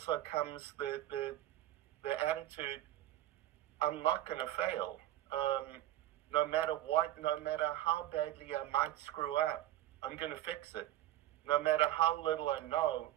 comes the attitude, I'm not going to fail. No matter what, no matter how badly I might screw up, I'm going to fix it. No matter how little I know,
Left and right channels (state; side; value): quieter; left; 14.0 dB